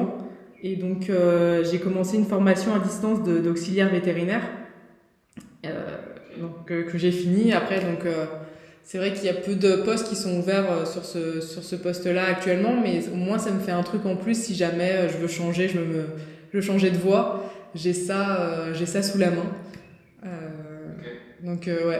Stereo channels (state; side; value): identical; both; correlation 1.00